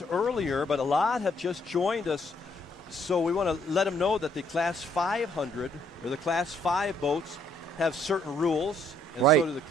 earlier, but a lot have just joined us. So we want to let them know that the Class 500 or the Class 5 boats have certain rules, and so do the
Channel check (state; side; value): normal; both; correlation 0.68